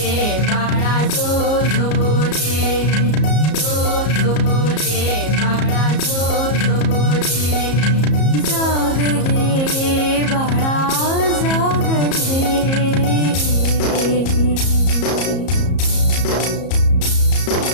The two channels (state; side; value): late; right; 34 ms